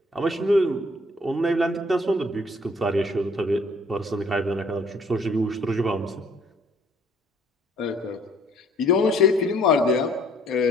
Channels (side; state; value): both; normal; correlation 0.60